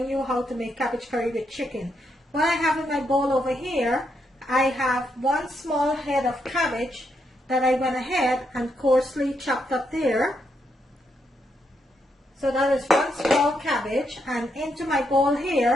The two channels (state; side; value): normal; both; correlation 0.79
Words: you how to make cabbage curry with chicken. What I have in my bowl over here, I have one small head of cabbage that I went ahead and coarsely chopped up there. So that is one small cabbage, and into my bowl